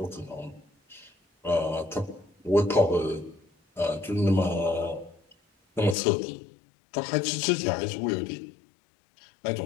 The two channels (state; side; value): drops out; right; at 6.0 s